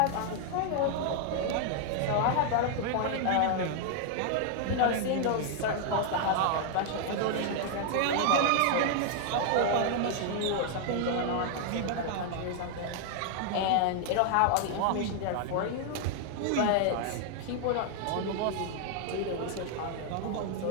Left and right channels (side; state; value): both; different; correlation 0.00